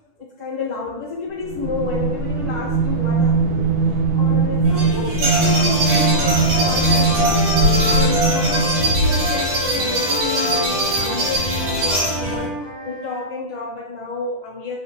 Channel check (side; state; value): left; late; 10 ms